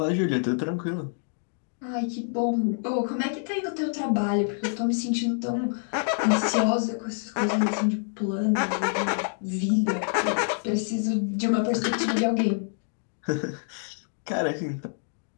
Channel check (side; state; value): right; silent; 60 dB below the other